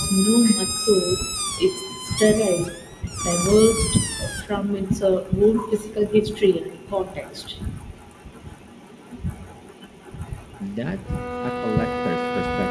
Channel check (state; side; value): identical; both; correlation 1.00